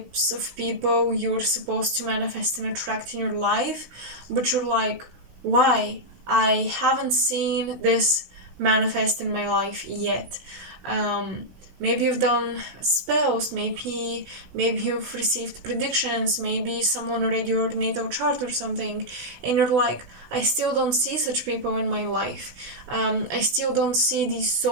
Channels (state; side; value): late; left; 16 ms